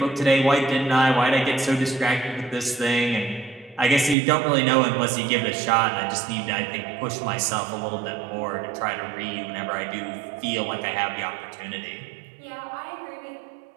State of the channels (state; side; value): drops out; left; at 4.2 s